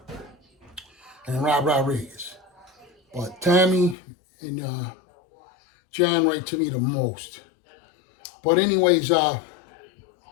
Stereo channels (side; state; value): right; drops out; at 4.0 s